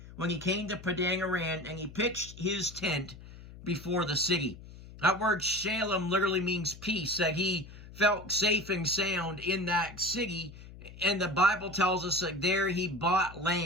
when he came to Padan Aram, and he pitched his tent before the city. That word Shalem literally means peace, that he felt safe and sound in that city. And the Bible tells us that there he bought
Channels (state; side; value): noise; left; hum, 17 dB below the sound